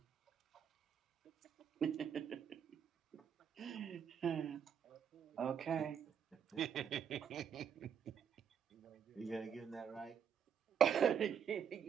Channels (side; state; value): left; quieter; 7.8 dB